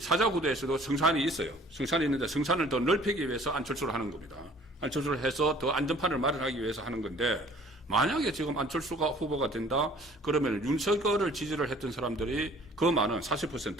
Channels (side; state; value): both; normal; correlation 0.53